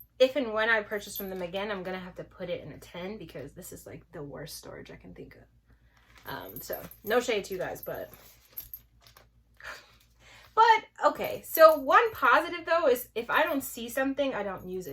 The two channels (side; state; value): both; identical; correlation 1.00